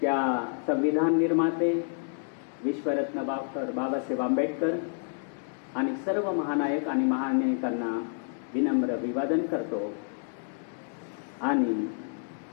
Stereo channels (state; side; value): silent; right; 59 dB below the other